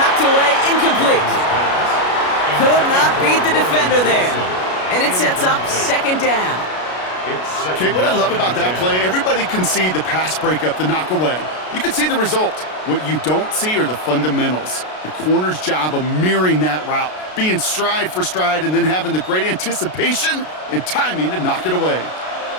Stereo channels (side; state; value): right; late; 33 ms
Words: away, incomplete. Could not beat the defender there. And it sets up 2nd down. Okay, what I love about that play, everybody can see the pass breakup, the knock away. You can see the result. What you don't see are the fundamentals. The corner's job of mirroring that route, being stride for stride, and then having the great anticipation and timing to knock it away.